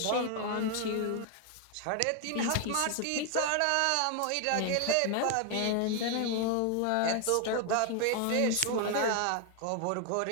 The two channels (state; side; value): different; both; correlation 0.00